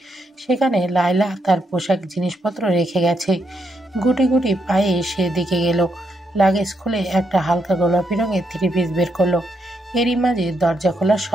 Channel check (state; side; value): normal; both; correlation 0.79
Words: সেখানে লায়লা তার পোশাক জিনিসপত্র রেখে গেছে। গুটি গুটি পায়ে সেদিকে গেল। লাগেজ খুলে একটা হালকা গোলাপি রঙের 3 পিস বের করলো। এরই মাঝে দরজা খোলার